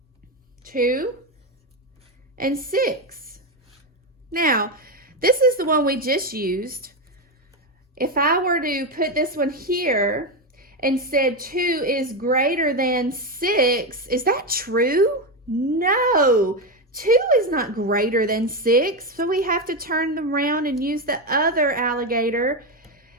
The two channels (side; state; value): both; normal; correlation 0.11